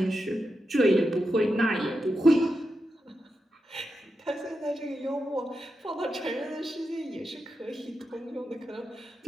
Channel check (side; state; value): both; normal; correlation 0.88